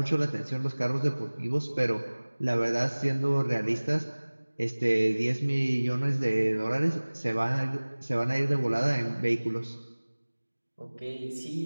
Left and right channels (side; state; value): both; inverted; correlation -1.00